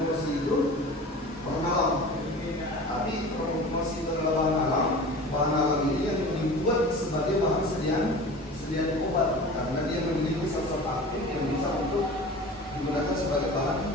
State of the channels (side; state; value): both; normal; correlation 0.37